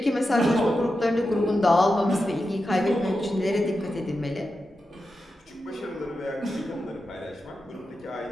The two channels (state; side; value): normal; both; correlation 0.90